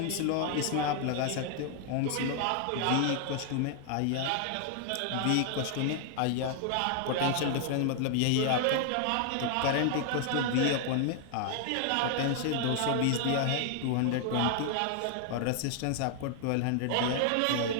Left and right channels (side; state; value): both; different; correlation 0.00